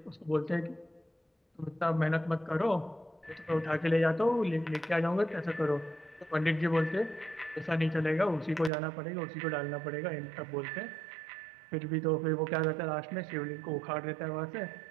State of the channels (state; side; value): drops out; left; at 8.7 s